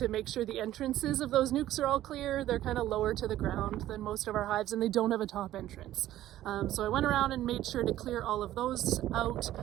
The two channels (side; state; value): left; quieter; 13.7 dB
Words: make sure the entrances of those nukes are all clear. They're kind of lower to the ground than most of our hives, and they don't have a top entrance. So I went around and made sure to clear all of those out.